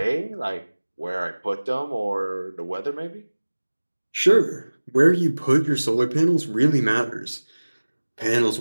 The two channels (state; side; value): inverted; both; correlation -1.00